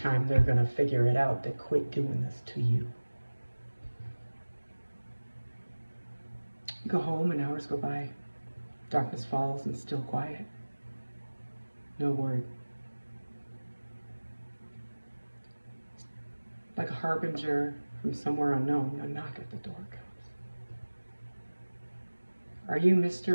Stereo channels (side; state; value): both; inverted; correlation -1.00